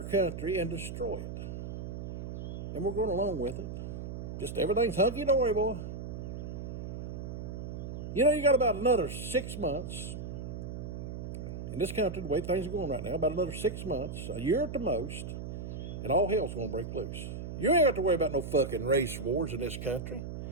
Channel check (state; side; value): noise; right; hum, 7 dB below the sound